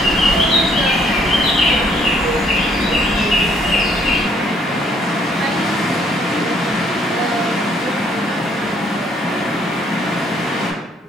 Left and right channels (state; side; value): normal; both; correlation 0.65